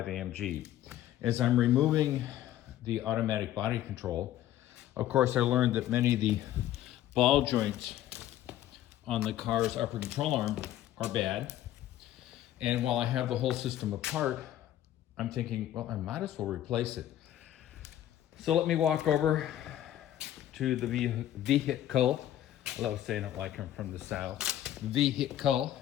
AMG. As I'm removing the automatic body control, of course, I learned that many of the ball joints on the car's upper control arm are bad. And while I have the whole system apart, I'm thinking, well, I might as well replace it. So let me walk over to the vehicle. I love saying it like I'm from the South. Vehicle.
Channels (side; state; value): right; quieter; 12.6 dB